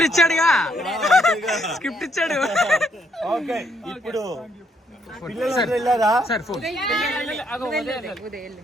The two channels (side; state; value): both; normal; correlation 0.71